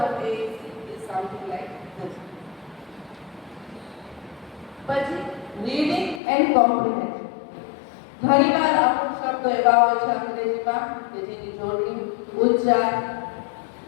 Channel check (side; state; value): right; drops out; at 6.2 s